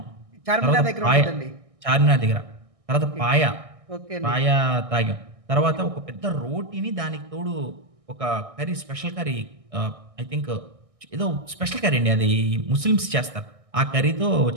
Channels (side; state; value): left; late; 1.6 ms